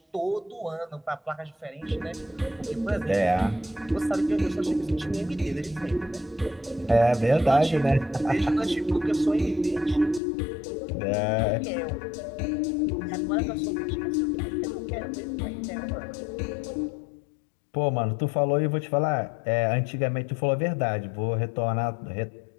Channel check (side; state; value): right; drops out; at 10.2 s